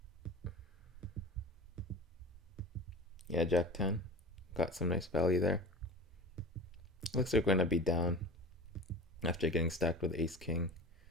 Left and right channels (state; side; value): normal; both; correlation 0.34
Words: Yeah, jack 10. Got some nice value there. Looks like we're gonna be down after getting stacked with ace king.